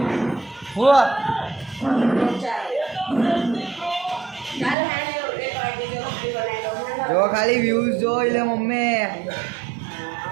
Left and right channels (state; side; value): drops out; left; at 4.8 s